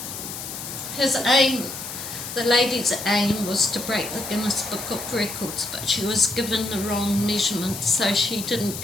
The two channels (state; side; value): noise; left; hiss, 8 dB below the sound